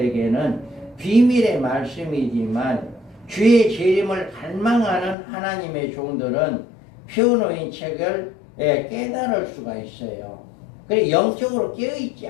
비밀의 말씀이지만 주의 재림을 갈망하는 하나님의 종들은 펴놓인 책을 깨달을 수가 있어요. 그래 영적으로 깨어있지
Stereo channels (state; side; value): drops out; right; at 5.2 s